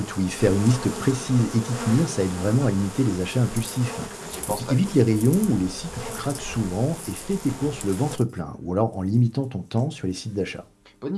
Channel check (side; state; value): both; identical; correlation 1.00